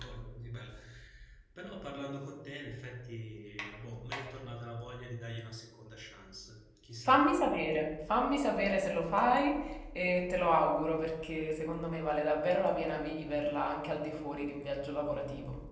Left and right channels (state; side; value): identical; both; correlation 1.00